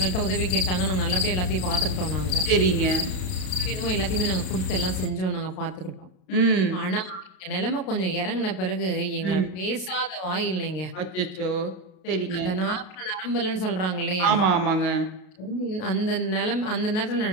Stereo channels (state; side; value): late; right; 32 ms